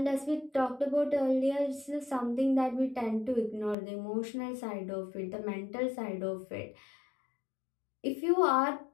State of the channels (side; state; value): right; drops out; at 3.8 s